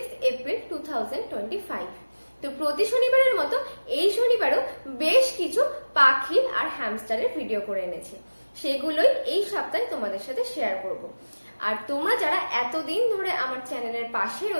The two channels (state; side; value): inverted; both; correlation -1.00